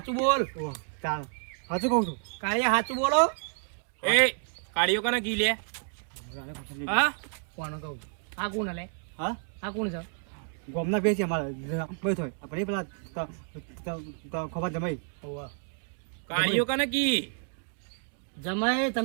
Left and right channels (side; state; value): left; silent; 58 dB below the other